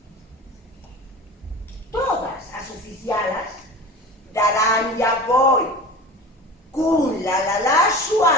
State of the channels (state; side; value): normal; both; correlation 0.35